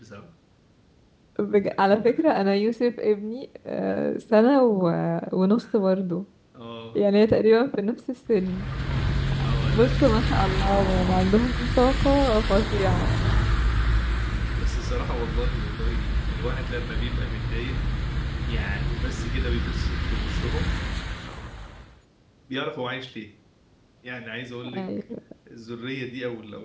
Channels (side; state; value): both; identical; correlation 1.00